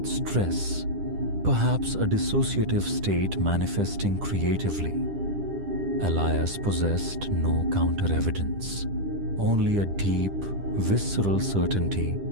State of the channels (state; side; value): late; left; 10 ms